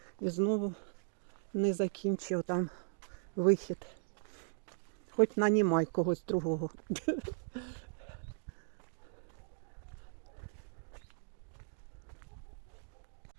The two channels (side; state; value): left; silent; digital silence